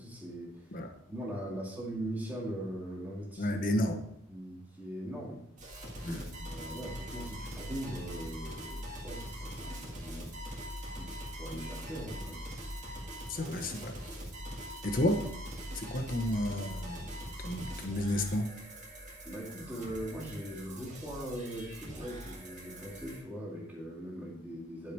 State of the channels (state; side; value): normal; both; correlation 0.67